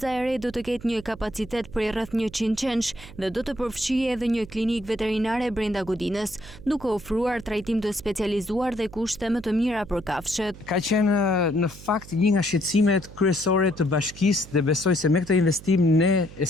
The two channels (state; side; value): noise; right; hum, 17 dB below the sound